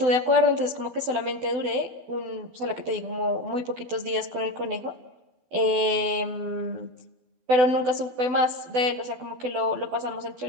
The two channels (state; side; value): late; left; 12 ms